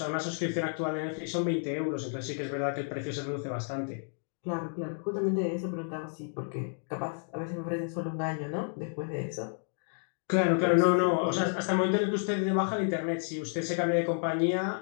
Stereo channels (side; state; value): right; silent; digital silence